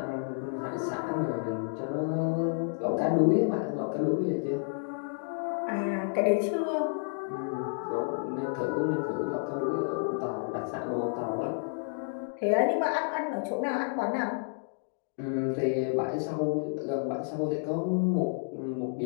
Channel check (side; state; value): right; silent; digital silence